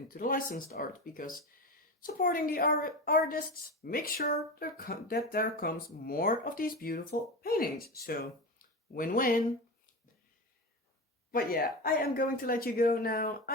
the licensed art, because supporting the artists, make sure that there comes more of these beautiful paintings. So win-win. But yeah, I am going to let you go now.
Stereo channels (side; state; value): both; normal; correlation 0.24